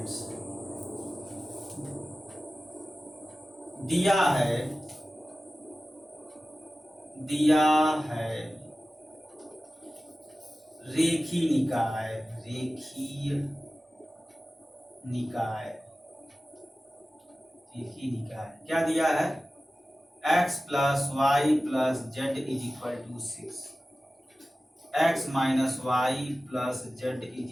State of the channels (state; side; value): normal; both; correlation 0.96